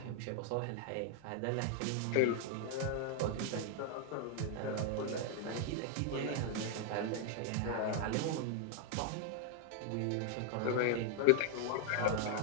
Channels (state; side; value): different; both; correlation 0.00